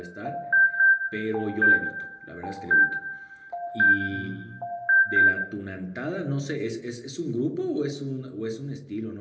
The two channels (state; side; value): identical; both; correlation 1.00